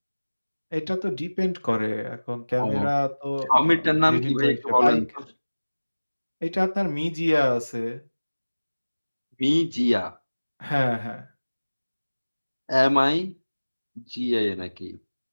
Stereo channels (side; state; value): both; inverted; correlation -1.00